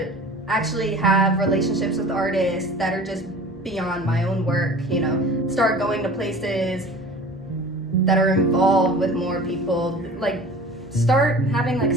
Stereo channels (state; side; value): normal; both; correlation 0.41